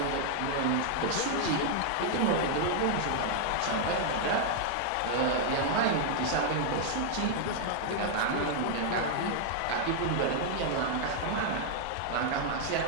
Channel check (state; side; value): different; both; correlation -0.01